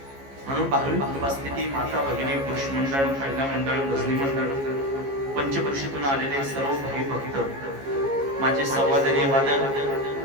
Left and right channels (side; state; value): left; late; 15 ms